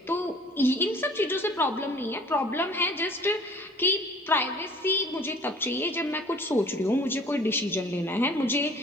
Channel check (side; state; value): both; normal; correlation 0.50